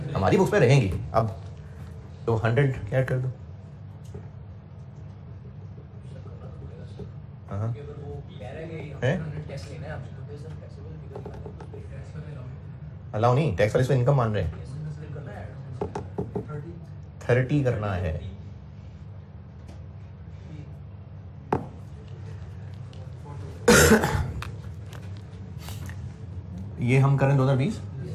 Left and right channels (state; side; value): identical; both; correlation 1.00